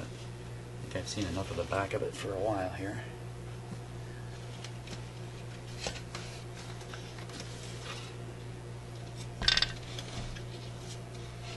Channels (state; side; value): identical; both; correlation 1.00